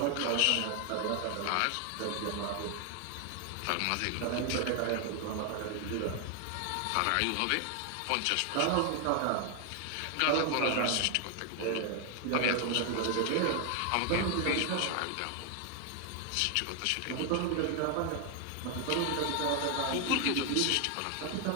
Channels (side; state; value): both; different; correlation 0.00